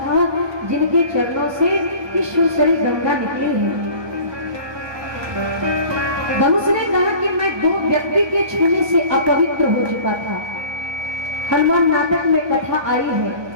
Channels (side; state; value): left; late; 1.2 ms